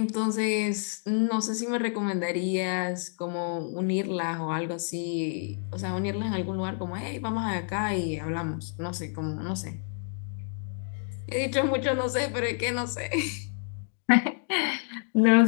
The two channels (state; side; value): silent; right; 59 dB below the other